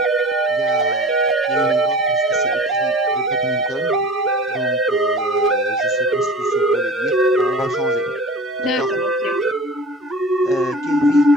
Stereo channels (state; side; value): normal; both; correlation 0.39